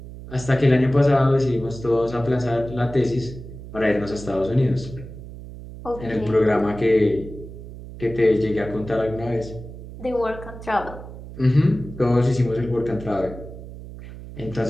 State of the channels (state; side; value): noise; right; hum, 13 dB below the sound